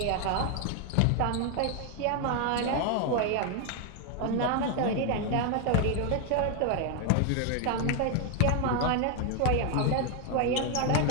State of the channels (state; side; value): different; both; correlation 0.01